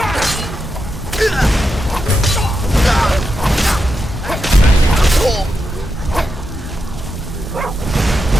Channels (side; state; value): both; normal; correlation 0.86